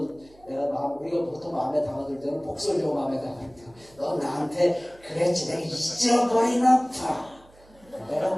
우리가 보통 마음에 담아둘 때는 복설적으로 마음에 담아둘 때 너 나한테 그랬지 내가 잊어버리나 봐. 내가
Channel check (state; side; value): noise; right; hum, 27 dB below the sound